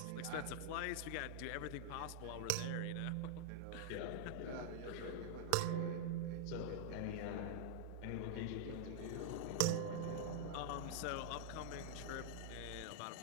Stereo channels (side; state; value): both; different; correlation 0.00